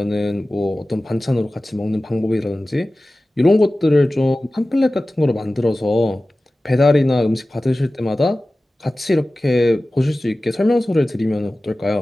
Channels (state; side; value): normal; both; correlation 0.96